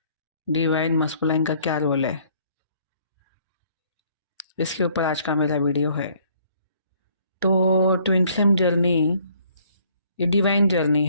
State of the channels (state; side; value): inverted; both; correlation -0.62